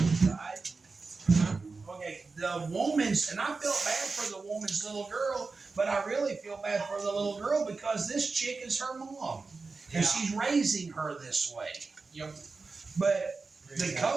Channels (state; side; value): quieter; left; 4.1 dB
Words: right? Okay, the woman's, and I felt bad for the woman's little girl, but I really feel bad for the little girl because this chick is her mom. And she's raising her this way. Yep. But the